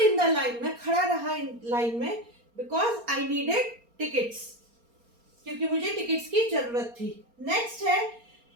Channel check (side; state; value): left; late; 4.3 ms